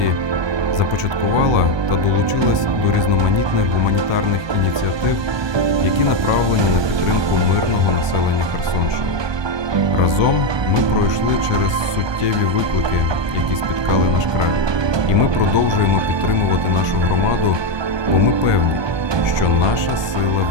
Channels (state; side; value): late; left; 1.2 ms